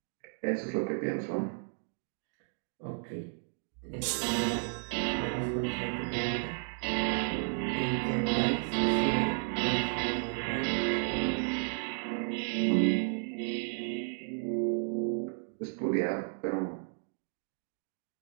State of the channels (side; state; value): left; silent; 56 dB below the other